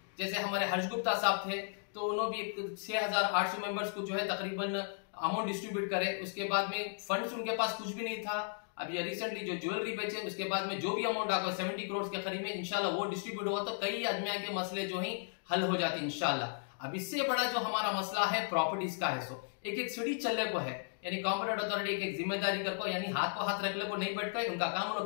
जैसे हमारे हर्ष गुप्ता साहब थे तो उन्होंने भी 6800 मेंबर्स को जो है तकरीबन अमाउंट डिस्ट्रीब्यूट करे। उसके बाद में फंड्स उनके पास कुछ भी नहीं था। अब ये रिसेंटली जो ज्वेलरी बेचे उसके बाद में जो भी अमाउंट आकर 70 करोड़ के करीब में इंशाल्लाह वो डिस्ट्रीब्यूट हुआ तो कई आदमियों के मसले जो है हल हो जाते इंशाल्लाह। अब इससे बड़ा जो हमारा मसला है प्रॉपर्टीज का है, सो एक सीढ़ी चलने को है। यानी कॉम्पिटेंट अथॉरिटी एक जिम्मेदारी कर को यानी हाथ को हाथ रख ले को नहीं बैठ कर उनका काम उन्होंने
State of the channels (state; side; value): silent; right; digital silence